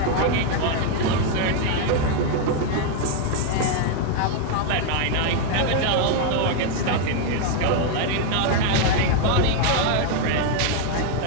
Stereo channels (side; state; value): both; different; correlation 0.01